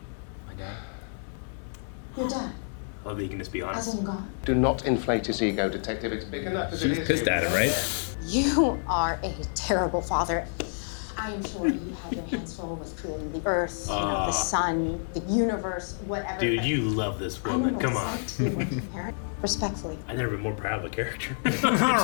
dad. Your dad, I love that you can just be honest. as in God. do not inflate his ego, detective. It's big enough as it She's is. pissed at him, right? You are a terrible father. I am sure you have your hands full with creating the earth, the sun, the universe, whatever. Dude, but you love this I know woman. what Come it's on. like to be a working parent. Respectfully. I've never been more proud of a character.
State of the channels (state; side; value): silent; right; 56 dB below the other